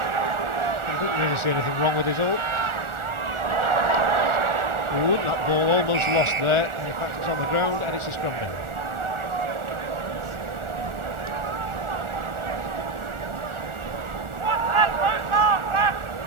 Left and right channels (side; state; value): left; late; 1.4 ms